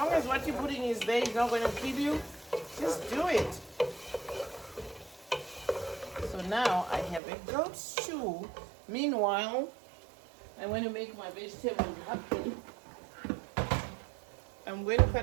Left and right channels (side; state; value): left; drops out; at 7.2 s